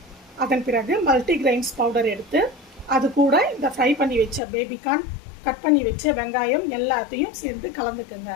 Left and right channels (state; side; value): drops out; right; at 4.4 s